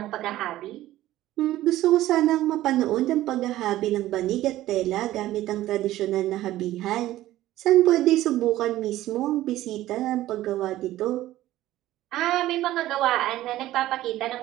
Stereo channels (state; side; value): quieter; left; 15.0 dB